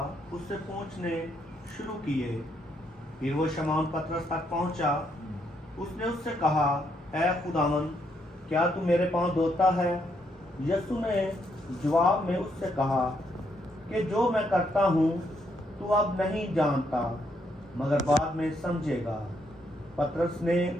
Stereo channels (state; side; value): normal; both; correlation 0.75